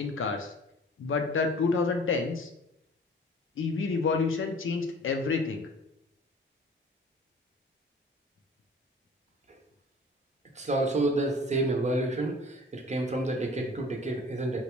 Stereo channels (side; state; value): both; normal; correlation 0.47